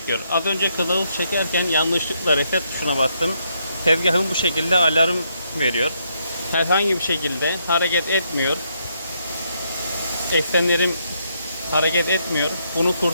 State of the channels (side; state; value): both; inverted; correlation -0.76